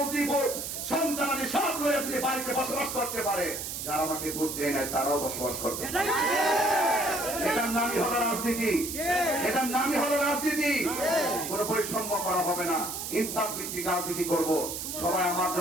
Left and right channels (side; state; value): right; noise; hiss, 5 dB below the sound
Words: সন্তানাদি সব লয়ে যদি বাড়িতে বসবাস করতে পারে, যারা আমাকে ভোট দেয় নাই তারাও বসবাস করতে পারে। এটার নামই হলো রাজনীতি, এটার নামই হলো রাজনীতি। কোন বৈষম্য করা হবে না, ইনসাফ ভিত্তিক রাজনীতি করব। সবাই আমার